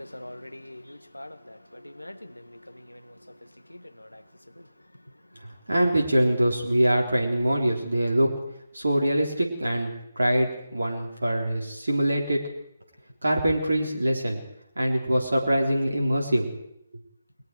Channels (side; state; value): both; inverted; correlation -0.94